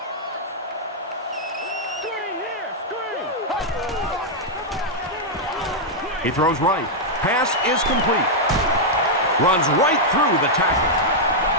He throws right. Pass is complete. Runs right through the tackle.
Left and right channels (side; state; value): both; normal; correlation -0.05